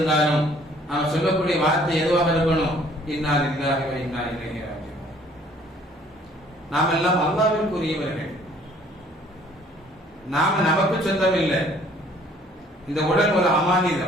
நாம் சொல்லக்கூடிய வார்த்தை எதுவாக இருக்கணும்? இன்னா லில்லாஹி வ இன்னா இலைஹி ராஜிஊன். நாம் எல்லாம் அல்லாஹ்விற்குரியவர்கள். நாம நமக்கு சொந்தம் இல்லை. இந்த உடல் ஒரு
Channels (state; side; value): normal; both; correlation 0.58